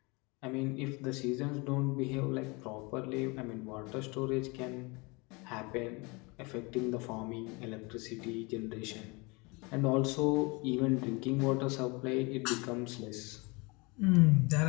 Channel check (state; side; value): quieter; right; 27.5 dB